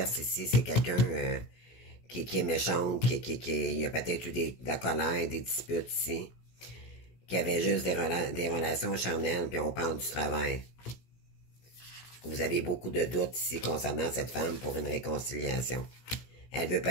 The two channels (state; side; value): late; right; 16 ms